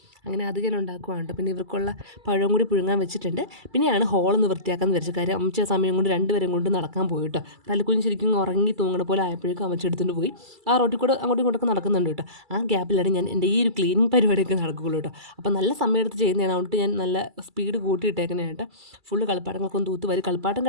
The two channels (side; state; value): left; late; 2.3 ms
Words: അങ്ങനെ അത് ഞാൻ ഉണ്ടാക്കുവാണ്. പിന്നെ ഇവർക്കുള്ള പഴം കൂടി പുഴുങ്ങാൻ വെച്ചിട്ടുണ്ട്. പിന്നെയാണ് ഹോളൊന്ന് വൃത്തിയാക്കാമെന്ന് വിചാരിച്ച കാര്യം. അമ്മച്ച സമയം കൊണ്ട് രണ്ടുപേരും കൊണ്ട് നടക്കാൻ പോയി കേട്ടോ. തലക്കുഞ്ഞ് ശരിക്കും ഉറങ്ങി തൂങ്ങണ പോലെ ആയപ്പോഴേക്കും അമ്മച്ച എടുത്തുകൊണ്ട് പോയി. ആ റോട്ടിൽ കൂടെ അങ്ങോട്ടും ഇങ്ങോട്ടൊക്കെ നടക്കുന്നുണ്ട് കേട്ടോ. ആ ഗ്യാപ്പിലാണ് ഞാൻ എൻ്റെ ഈ ഒരു ക്ലീനിങ് പരിപാടിയൊക്കെ നടക്കുകയുള്ളൂ കേട്ടോ. അപ്പോൾ നല്ല സമയം എടുത്ത് ചെയ്യുന്നതാണ്, അതുകൊണ്ട് ഞാൻ നല്ല സ്പീഡ് കൂട്ടിയിട്ടേക്കുന്നതായിട്ട്. ഫുള്ള് കളിപ്പാട്ടങ്ങളൊക്കെ ഒന്ന് തൂത്ത് വരും. കളിപ്പാട്ടം